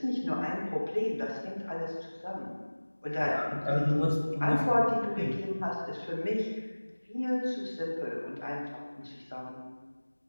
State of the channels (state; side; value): inverted; both; correlation -1.00